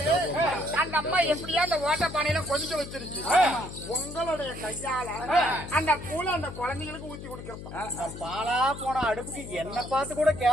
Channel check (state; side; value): noise; left; hum, 11 dB below the sound